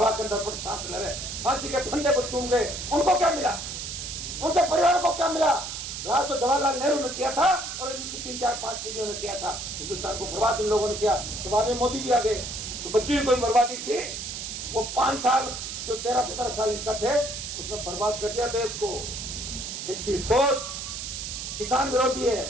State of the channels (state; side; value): noise; right; hiss, 6 dB below the sound